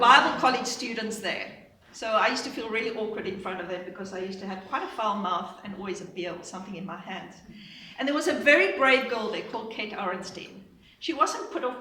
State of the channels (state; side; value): identical; both; correlation 1.00